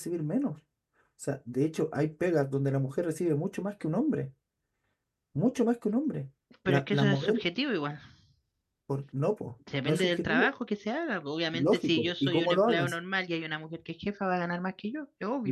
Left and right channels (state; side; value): identical; both; correlation 1.00